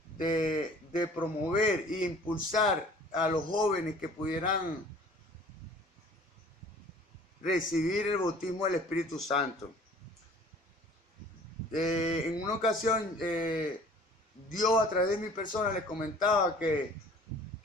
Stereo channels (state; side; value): normal; both; correlation 0.50